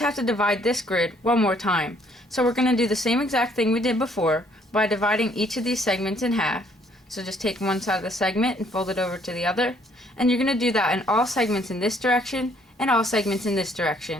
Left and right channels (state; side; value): normal; both; correlation 0.64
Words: have to divide this grid one more time. So we're going to do the same exact thing we did before by dividing each of these segments in half. So just take one side of the segment and fold it over to the other, and you're going to do that in all segments in this direction and all segments in this